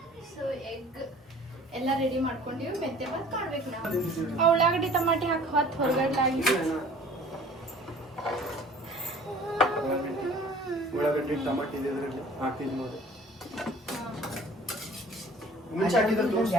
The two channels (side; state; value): both; normal; correlation 0.49